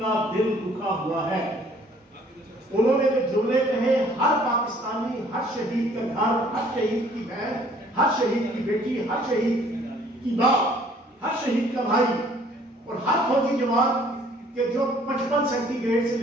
کا دل دکھا ہوا ہے، انہوں نے جو جملے کہے، ہر پاکستانی، ہر شہید کا گھر، ہر شہید کی بہن، ہر شہید کی بیٹی، ہر شہید کی باپ، ہر شہید کا بھائی اور ہر فوجی جوان کہ جو 55 سینٹی گریڈ سے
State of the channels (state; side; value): normal; both; correlation 0.58